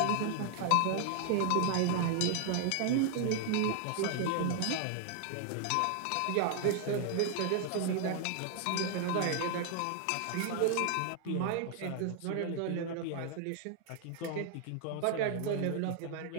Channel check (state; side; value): different; both; correlation 0.00